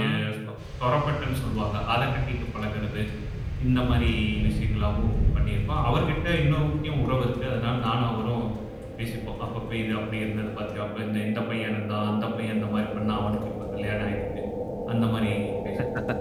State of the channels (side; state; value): both; identical; correlation 1.00